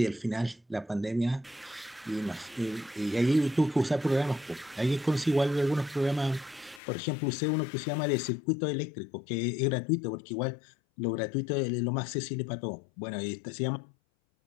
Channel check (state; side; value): drops out; right; at 6.8 s